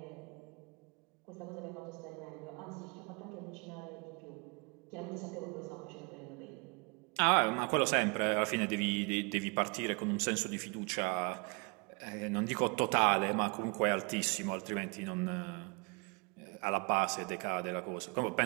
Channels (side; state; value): left; quieter; 32.4 dB